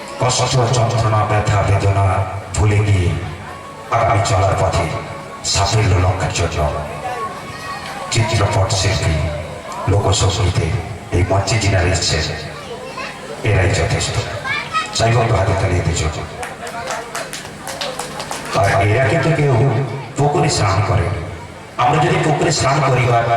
কষ্ট, যন্ত্রণা, ব্যথা, বেদনা ভুলে গিয়ে আগামী চলার পথে সাফল্য লক্ষ্যের জন্য চিত্রপট শিল্পী, লোকসঙ্গীতে এই মঞ্চে যিনারা এসছেন এরাই যথেষ্ট। চাইব হাতে তালিয়ে দিয়েছ। আর এরা কিন্তু কেউ পুকুরে স্নান করে। আমরা যদি পুকুরে স্নান করি বা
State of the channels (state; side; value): identical; both; correlation 1.00